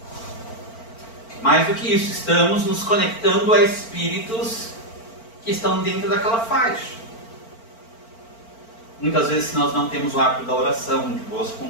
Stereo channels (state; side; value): late; right; 4.4 ms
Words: Mais do que isso, estamos nos conectando a espíritos que estão dentro daquela faixa. Muitas vezes, se nós não temos o hábito da oração, de boas